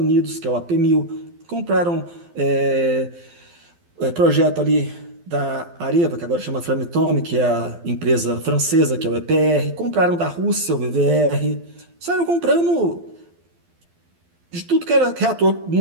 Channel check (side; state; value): left; late; 12 ms